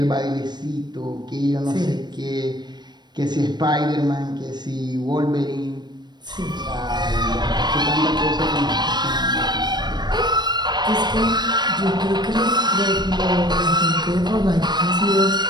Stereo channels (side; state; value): left; late; 0.21 ms